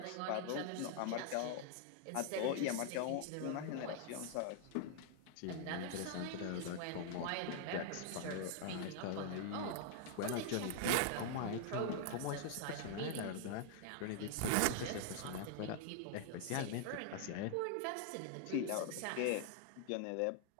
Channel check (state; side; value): different; both; correlation 0.00